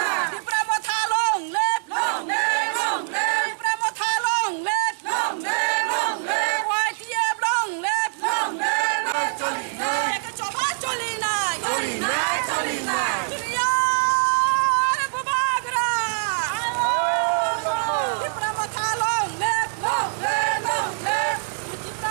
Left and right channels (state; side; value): silent; left; digital silence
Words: दिप्रा मथा लं लेप दिप्रा मथा लं लेप वाइटिएब लं लेप एक चबा चली नाय दुनियार बुबा गर दिप्रा मथा लं लेप दिप्रा